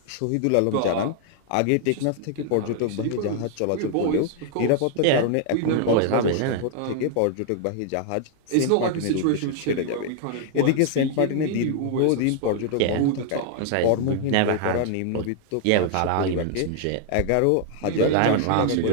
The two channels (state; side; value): different; both; correlation 0.00